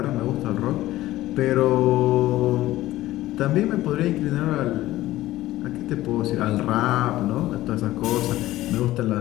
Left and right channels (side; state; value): right; quieter; 15.9 dB